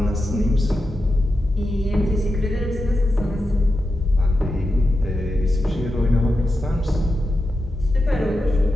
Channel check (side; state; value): both; normal; correlation 0.90